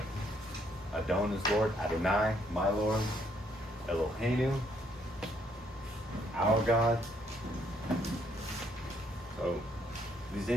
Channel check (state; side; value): normal; both; correlation 0.70